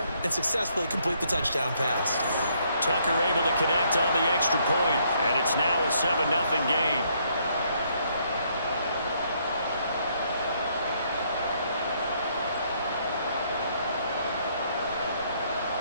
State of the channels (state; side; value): inverted; both; correlation -0.70